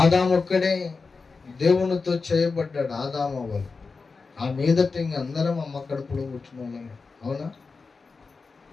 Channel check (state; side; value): quieter; right; 4.4 dB